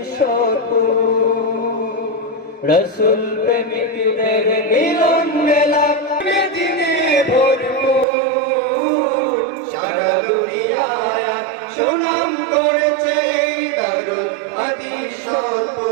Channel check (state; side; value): drops out; left; at 8.1 s